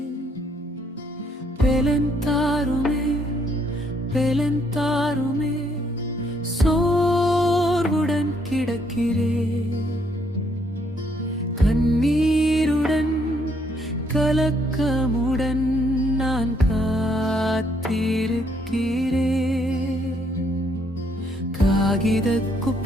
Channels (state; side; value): normal; both; correlation 0.70